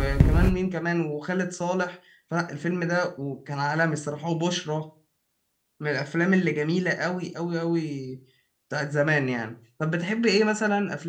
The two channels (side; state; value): both; identical; correlation 1.00